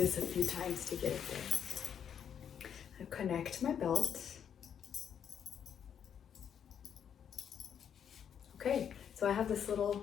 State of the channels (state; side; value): quieter; right; 8.4 dB